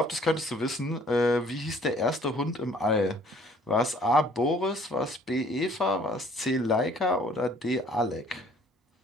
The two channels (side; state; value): both; normal; correlation 0.57